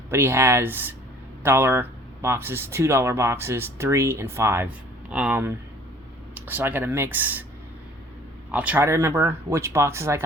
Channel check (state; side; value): normal; both; correlation 0.53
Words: But he has $1 boxes, $2 boxes, 3 and 5. So I got a mix. I'll try to remember which boxes I